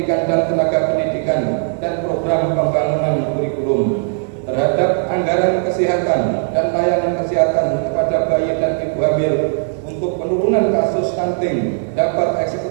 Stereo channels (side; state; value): left; silent; 64 dB below the other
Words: dan tenaga pendidikan, dan program pembangunan kurikulum. Terhadap anggaran kesehatan dan layanan kesehatan kepada bayi dan ibu hamil untuk penurunan kasus stunting dapat